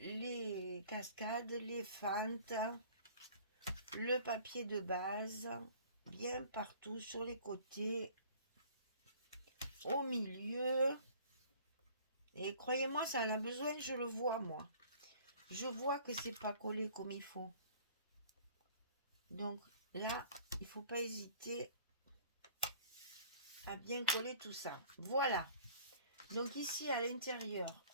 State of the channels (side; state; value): both; inverted; correlation -0.51